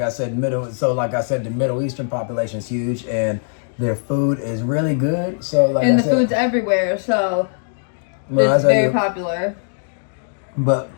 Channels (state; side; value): silent; right; digital silence